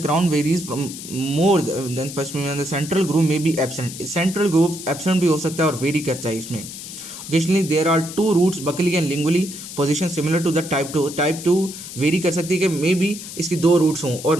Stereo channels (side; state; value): left; noise; hiss, 11 dB below the sound